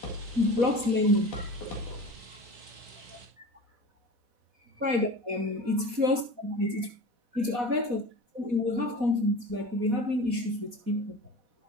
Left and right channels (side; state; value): left; late; 4.1 ms